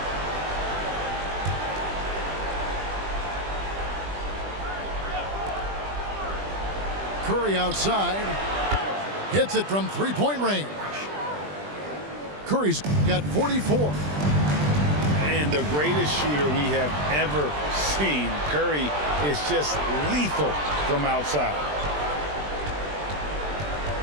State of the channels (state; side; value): late; left; 20 ms